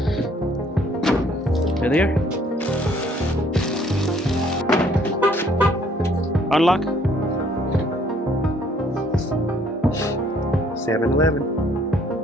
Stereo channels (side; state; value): both; normal; correlation 0.62